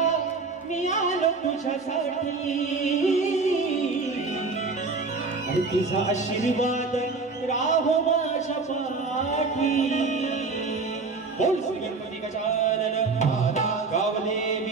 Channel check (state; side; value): quieter; left; 4.1 dB